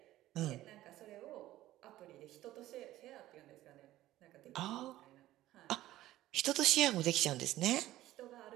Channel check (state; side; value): quieter; left; 15.1 dB